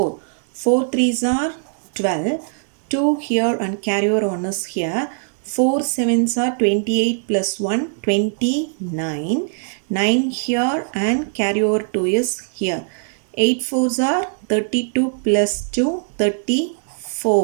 4 threes are 12. 2 here and carry over 1 is here. 4 sevens are 28 plus 1, 29. 9 here and carry over 2 is here. 8 fours are 32 plus 2,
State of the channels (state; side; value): silent; left; digital silence